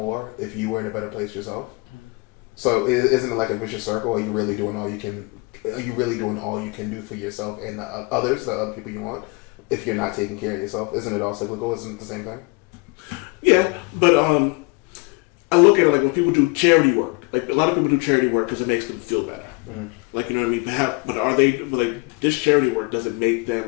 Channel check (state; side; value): quieter; right; 28.7 dB